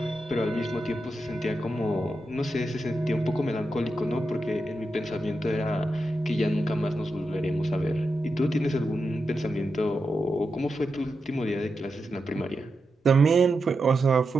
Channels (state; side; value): normal; both; correlation 0.88